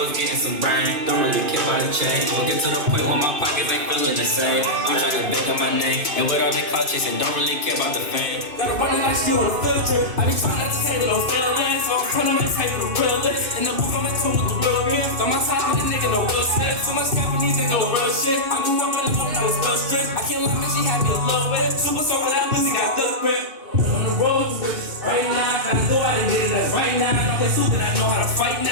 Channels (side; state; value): left; late; 2.6 ms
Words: was getting some brain. Don't really care about the chain. Get to the point where my pockets ain't feeling the same. I'm trying to make up my name, and with all that clout chasing, don't really care about the fame. Gotta run it like she on a field trip. I be trying not to take no feelings, so I'm trying to make take the realest. In the booth, I'm in tune with the real gift. On my side, with a nigga, no real shit. Too much Japanese, ain't no real shit. I grew up in a home that was real strict. I can't lie, man, she had me a little bit. Super soaker, that pussy got good grip. On the road to riches right now. Gotta go out and get it as right now. Don't play stupid, I know how to fight